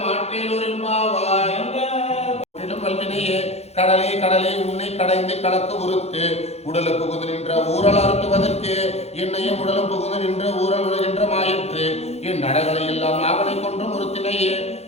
மாற்றேலூரின்பாவாய் வல்வினையே கடலே கடலே உன்னை கடைந்து கலக்கு உறுத்து உடலுக்கு புகுந்து நின்ற ஊரல் அறுத்துவதற்கு என்னையும் உடலும் புகுந்து நின்ற ஊரல் உலகின்ற மாயிற்று என் நடகளை எல்லாம் நாகனை கொன்றும் உறுத்தினையே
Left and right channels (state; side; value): late; right; 0.31 ms